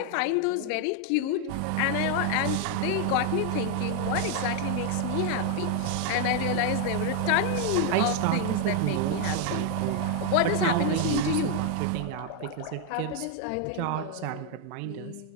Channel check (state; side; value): different; both; correlation 0.01